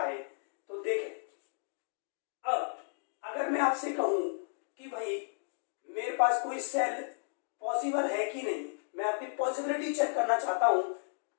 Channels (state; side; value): silent; right; digital silence